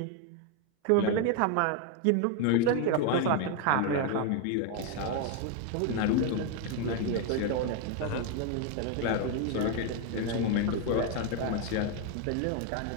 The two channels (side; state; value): both; different; correlation 0.01